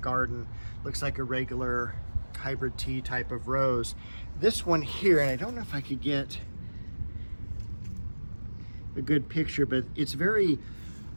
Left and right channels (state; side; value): inverted; both; correlation -1.00